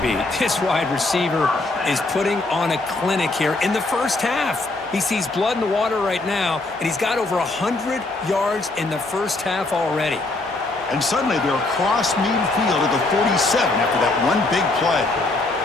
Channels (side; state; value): right; quieter; 3.1 dB